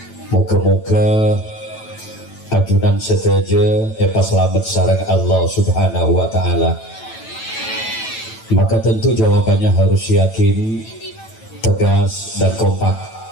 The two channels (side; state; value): right; late; 9.0 ms